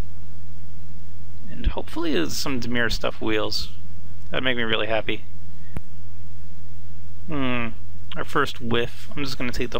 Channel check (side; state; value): both; identical; correlation 1.00